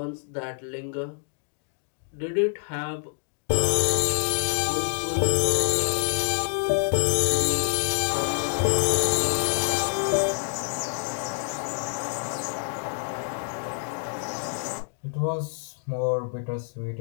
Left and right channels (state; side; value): silent; right; 60 dB below the other